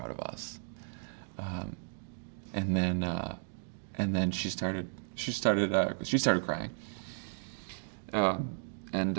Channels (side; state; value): left; silent; digital silence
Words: of us." And then she started crying.